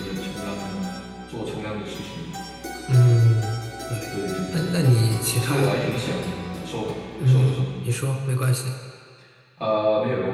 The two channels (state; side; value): identical; both; correlation 1.00